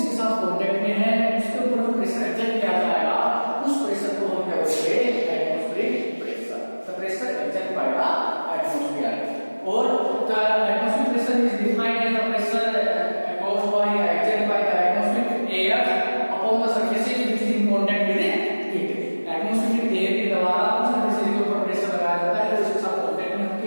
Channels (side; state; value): both; inverted; correlation -1.00